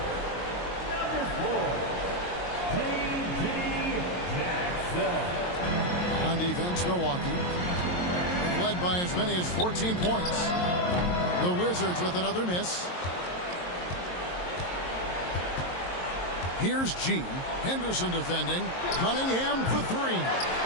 number 4, T.J. Jackson. On defense, Milwaukee. They've led by as many as 14 points. The Wizards with another miss. Here's G. Henderson defending. Cunningham for 3.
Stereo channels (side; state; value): right; late; 22 ms